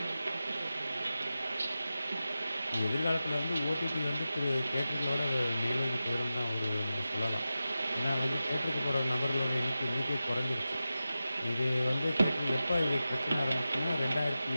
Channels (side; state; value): both; inverted; correlation -0.94